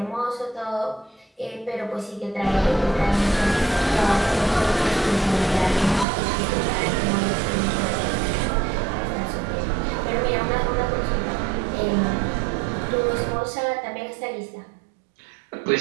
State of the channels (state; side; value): drops out; left; at 6.1 s